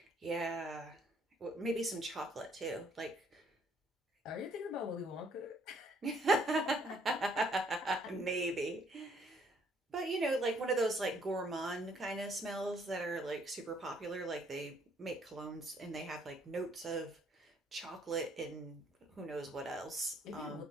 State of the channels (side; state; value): both; normal; correlation 0.65